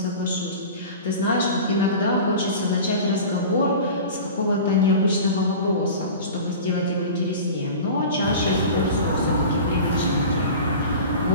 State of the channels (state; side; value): inverted; both; correlation -0.36